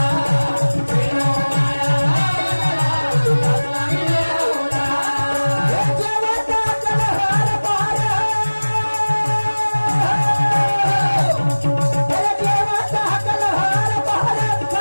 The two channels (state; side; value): inverted; both; correlation -1.00